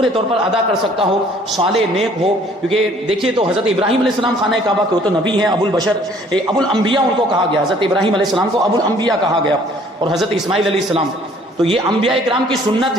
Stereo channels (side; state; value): both; normal; correlation 0.57